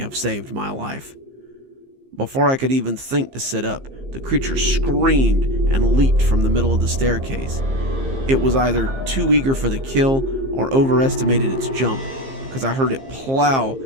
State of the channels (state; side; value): late; left; 15 ms